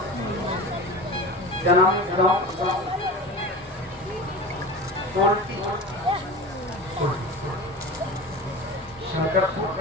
क्या नाम है गाँव? शंकरपुर।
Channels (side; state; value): both; normal; correlation 0.32